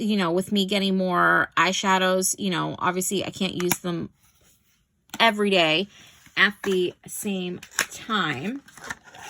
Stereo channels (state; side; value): identical; both; correlation 1.00